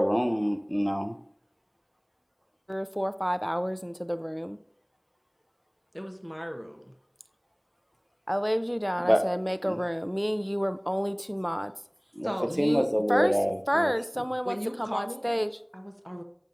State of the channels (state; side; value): identical; both; correlation 1.00